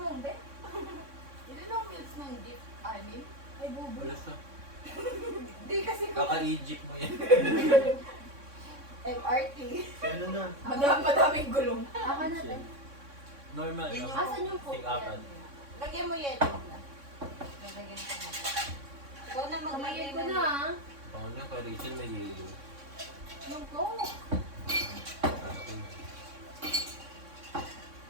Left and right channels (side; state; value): left; late; 3.6 ms